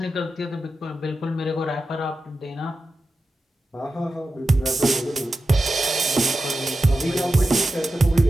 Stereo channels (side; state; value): both; normal; correlation 0.92